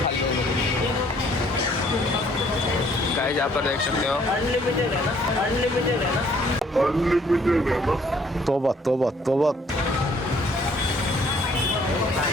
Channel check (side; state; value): both; normal; correlation 0.62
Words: गाइस यहाँ पर देख सकते हो. अनलिमिटेड है ना. तोबा तोबा तोबा.